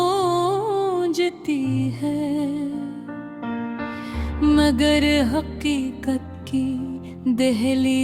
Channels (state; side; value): identical; both; correlation 1.00